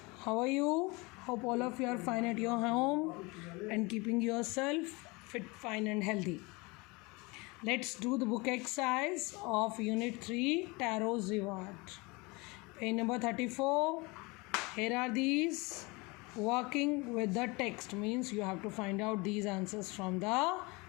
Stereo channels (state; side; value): quieter; right; 26.0 dB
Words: How are you? Hope all of you are fine at your home and keeping yourself fit, fine, and healthy. Let's do the book exercise of Unit 3 Tarot's Reward. Page number 34. Here are these. Working with the text means you have to find out these answers from the